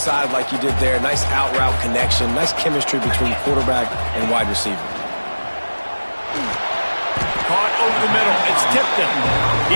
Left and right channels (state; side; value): inverted; both; correlation -1.00